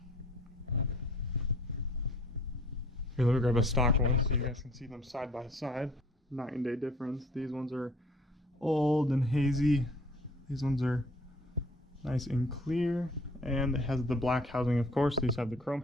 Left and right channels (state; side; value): normal; both; correlation 0.53